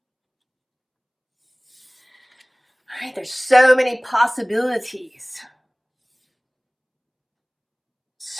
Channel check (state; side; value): identical; both; correlation 1.00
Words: All right, there's so many possibilities.